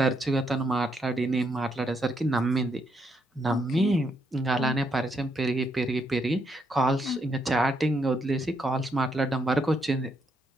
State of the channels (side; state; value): both; normal; correlation 0.76